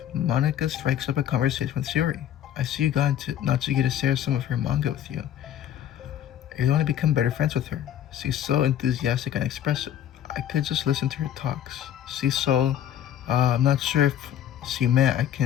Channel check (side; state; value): right; quieter; 10.8 dB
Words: Monika strikes up a conversation with Sayori. I see you got Natsuki to share some of her manga with you. You want to become better friends with her. She's so enthusiastic and expressive. I could just listen to her talks. She's so, I'm not sure if she meant I